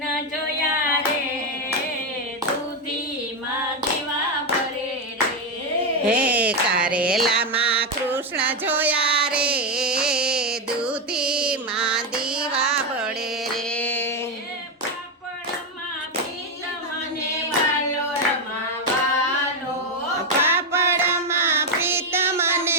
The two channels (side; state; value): both; normal; correlation 0.07